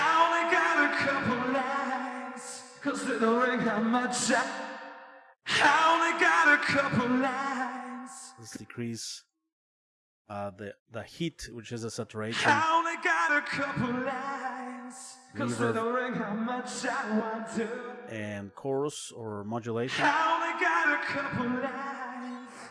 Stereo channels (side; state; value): both; identical; correlation 1.00